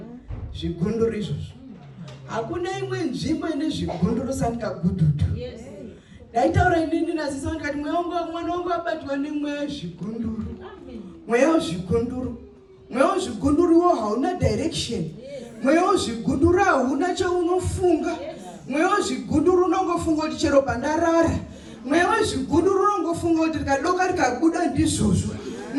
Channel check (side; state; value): both; identical; correlation 1.00